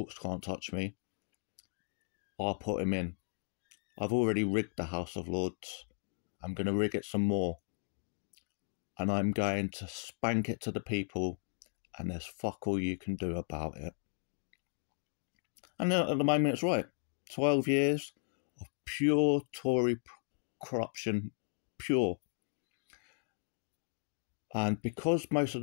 can't touch me. I'll put him in. I've already rigged the House of Lords. I'm going to rig it some more. And I'm going to spank it to the people. And there's fuck all you can do about it. And at the moment it's right. 12 years of pure Tory corruption. Pure. And because most of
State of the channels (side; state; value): right; silent; digital silence